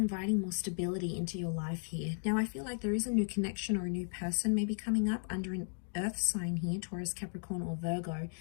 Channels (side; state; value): right; silent; 54 dB below the other